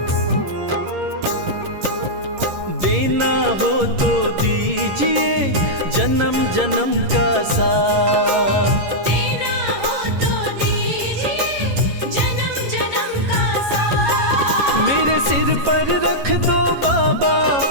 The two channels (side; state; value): left; late; 11 ms